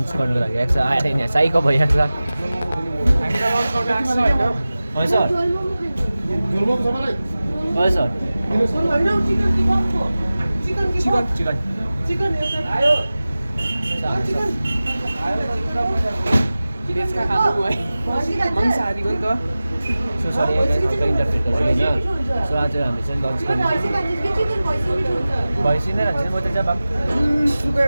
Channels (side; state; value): both; inverted; correlation -0.97